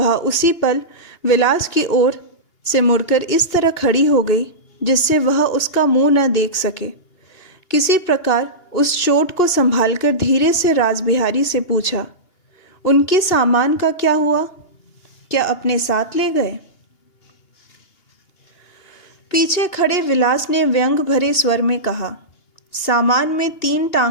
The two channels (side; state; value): right; late; 2.8 ms